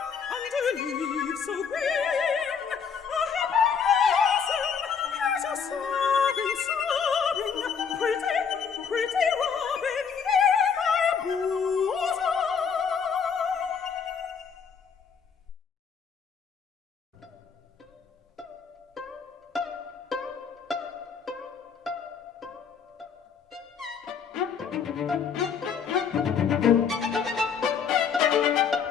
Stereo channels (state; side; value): quieter; right; 6.6 dB